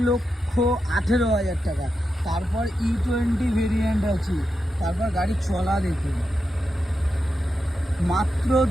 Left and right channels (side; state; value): both; normal; correlation 0.87